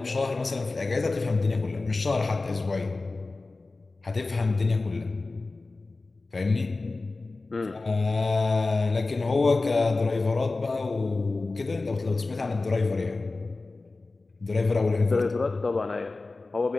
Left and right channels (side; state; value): right; quieter; 3.5 dB